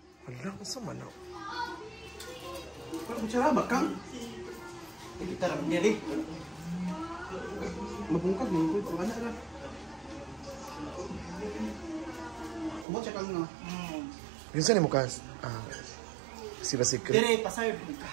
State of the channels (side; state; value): left; drops out; at 12.9 s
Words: Wala, ang sama na. Parang magsara ba, Kang? Kita lang nili. Mabungkag mo. Wala na. Kumot siya, Kang, no? Yun saan mo, Kas? Si ba secret? Dire, paserve